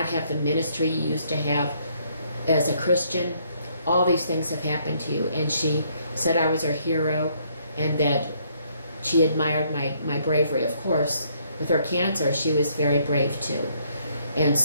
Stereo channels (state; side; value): inverted; both; correlation -0.68